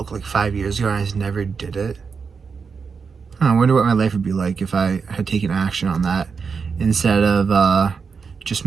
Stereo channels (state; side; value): quieter; left; 5.5 dB